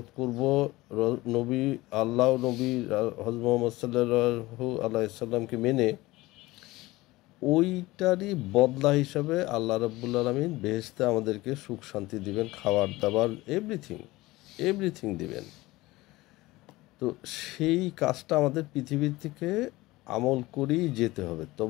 করব, নবী আল্লাহ নবী হযরত মুহাম্মদ সাল্লাল্লাহু আলাইহি সাল্লামকে মেনে, ওইটারই বদলা হিসাবে আল্লাহ রাব্বুল আলামিন বেহেশতে আমাদেরকে সুখ শান্তি দিবেন, খাবার দাবার এভরিথিং দিবেন। তো সেই কাজটা আমাদের পৃথিবীর থেকে আমল করেই যেতে হবে,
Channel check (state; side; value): quieter; right; 19.5 dB